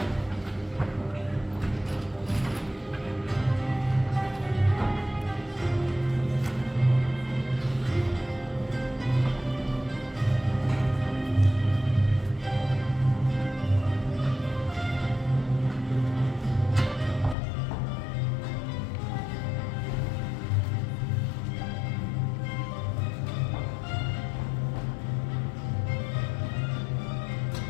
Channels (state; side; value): drops out; right; at 17.4 s